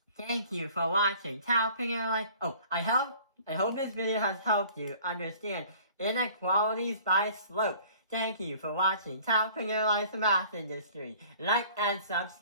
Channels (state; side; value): inverted; both; correlation -0.50